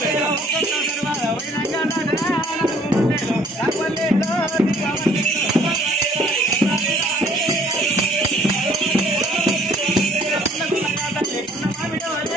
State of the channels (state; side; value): normal; both; correlation 0.58